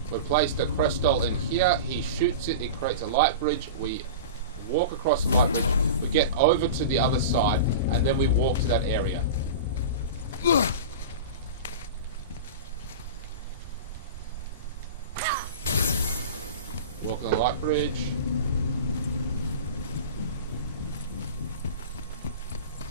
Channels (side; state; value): both; inverted; correlation -0.30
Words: We place the crystal in here, he shoots it, it creates a light bridge, we walk across the light bridge, we get over to the other side, and then we walk to that area. Walk on the light bridge.